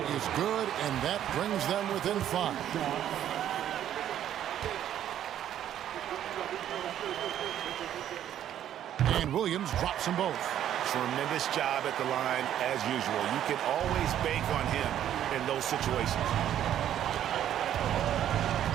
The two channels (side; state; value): left; quieter; 10.9 dB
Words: good, and that brings them within 5. And Williams drops them both. Tremendous job at the line as usual. You can always bank on him in those situations.